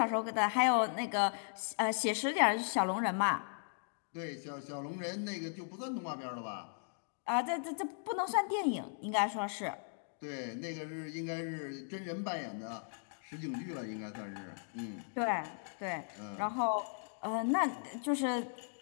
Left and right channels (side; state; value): right; silent; digital silence